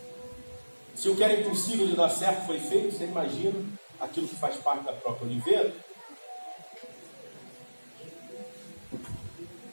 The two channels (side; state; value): both; inverted; correlation -1.00